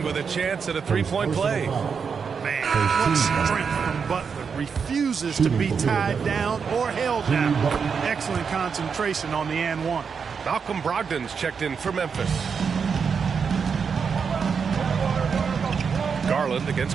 with a chance at a three-point play. Man, what strength from Butler. Refuses to be tied down or held down. Excellent concentration on the and one. Malcolm Brogdon's checked in for Memphis. Garland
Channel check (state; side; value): quieter; left; 6.1 dB